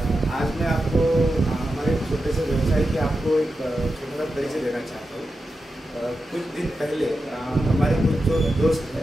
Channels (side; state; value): both; normal; correlation 0.90